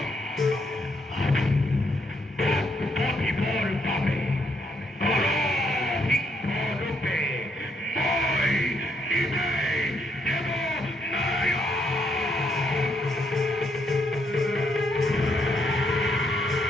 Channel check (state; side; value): normal; both; correlation 0.75